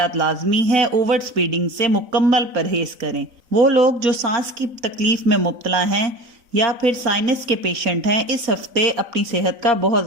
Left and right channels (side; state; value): left; late; 4.0 ms